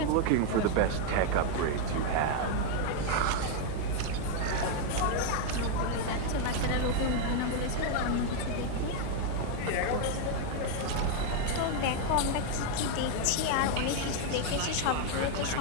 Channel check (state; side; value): different; both; correlation 0.00